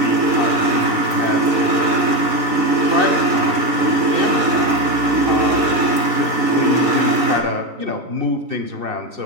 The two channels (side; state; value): left; late; 4.2 ms